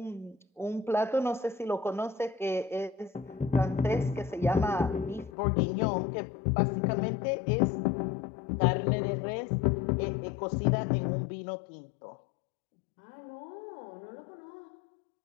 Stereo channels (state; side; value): drops out; right; at 5.3 s